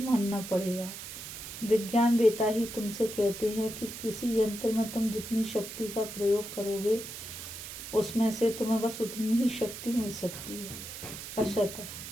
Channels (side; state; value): right; noise; hiss, 10 dB below the sound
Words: पड़ेगा। विज्ञान वेता ही तुमसे कहते हैं कि किसी यंत्र में तुम जितनी शक्ति का प्रयोग करोगे, उसमें से तुम्हें बस उतनी ही शक्ति मिल सकती है। असत